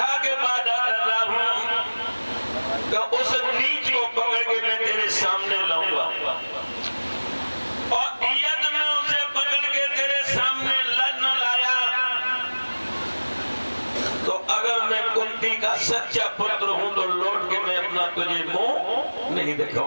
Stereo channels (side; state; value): both; inverted; correlation -1.00